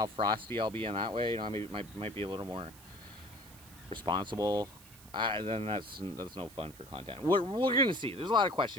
frosty I'll be in that way. You know, I might be a little more responsible. Then that's no fun for content. We're going to see. There's a lot of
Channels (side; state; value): right; noise; hiss, 21 dB below the sound